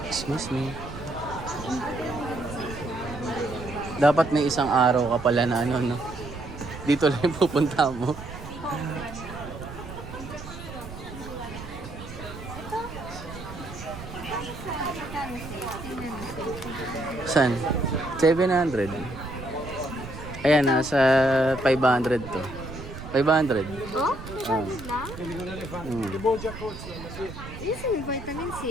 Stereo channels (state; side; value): noise; right; rumble, 12 dB below the sound